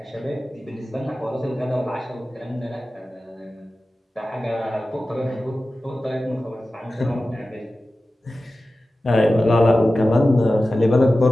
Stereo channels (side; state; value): both; normal; correlation 0.95